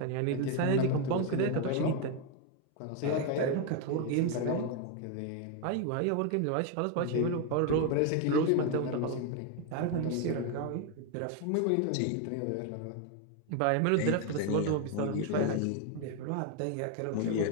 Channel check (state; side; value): different; both; correlation 0.01